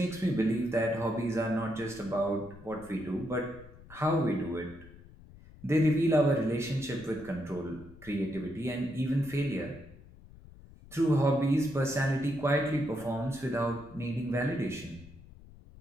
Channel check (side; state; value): left; noise; rumble, 20 dB below the sound